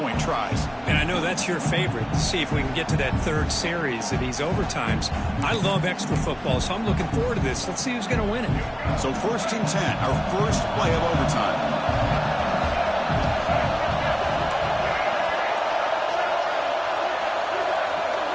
tries. And I know that's your favorite, to see if we can get to that third series of these overtimes. I love extra football, so I'm looking forward to this. Let's see who's going to win it. So first and 10, our first play of overtime.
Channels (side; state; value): both; identical; correlation 1.00